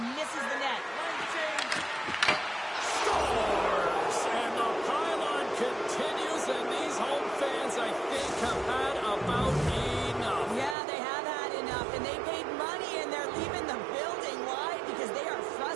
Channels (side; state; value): left; drops out; at 10.8 s